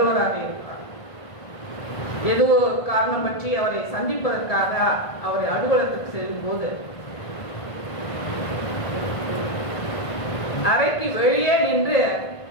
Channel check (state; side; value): late; right; 1.5 ms